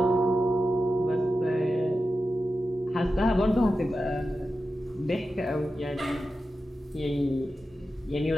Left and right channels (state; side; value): normal; both; correlation 0.92